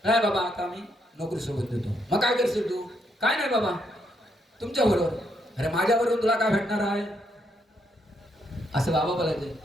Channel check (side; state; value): both; normal; correlation 0.76